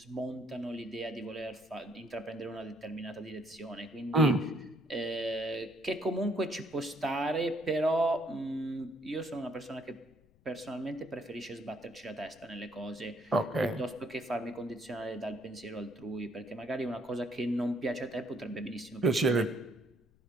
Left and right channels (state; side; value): noise; left; rumble, 29 dB below the sound